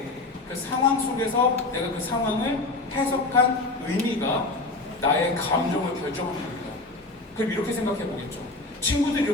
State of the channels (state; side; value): quieter; right; 3.1 dB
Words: 그 상황 속에서 내가 그 상황을 해석한 의미가 나의 감정을 결정하는 겁니다. 그럼 이렇게 생각해보겠죠. 친구들이